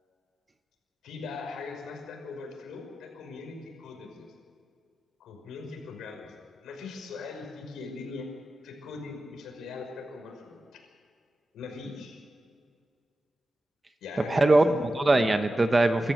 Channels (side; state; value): both; normal; correlation 0.93